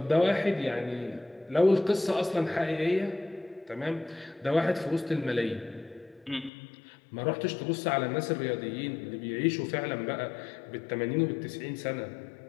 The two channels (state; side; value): drops out; right; at 6.5 s